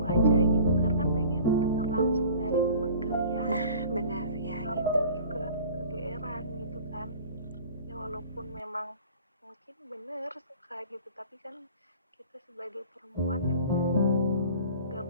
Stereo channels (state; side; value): inverted; both; correlation -0.44